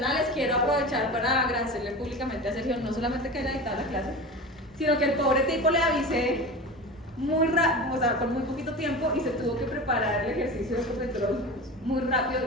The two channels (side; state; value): both; normal; correlation 0.30